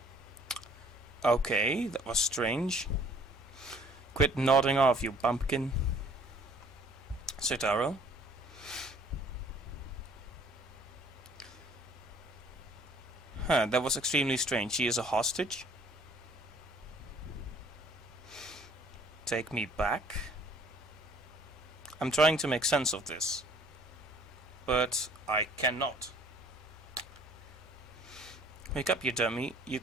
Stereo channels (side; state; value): both; normal; correlation 0.56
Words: Okay, that was strange. Quit nodding off, you bumpkin. Citaro. Huh, that was extremely strange. She is a hostage. Take me back. I'm trying to make sense of this, but I cannot. Wake up, you dummy.